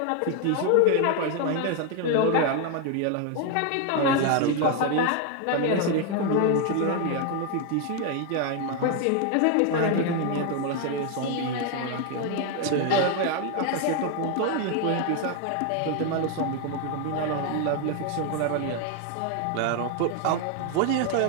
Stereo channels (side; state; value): both; different; correlation 0.01